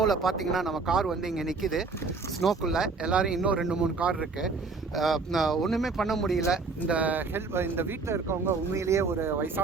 பார்த்தீங்கன்னா நம்ம கார் வந்து இங்கே நிற்கிது ஸ்னோக்குள்ளே. எல்லோரும் இன்னும் 2-3 கார் இருக்குது. ஒன்றுமே பண்ண முடியல. இந்த வீட்டில் இருக்கவங்க உண்மையிலேயே ஒரு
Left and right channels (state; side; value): quieter; left; 4.3 dB